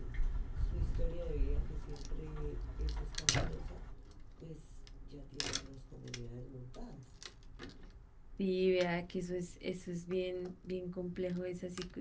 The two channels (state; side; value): identical; both; correlation 1.00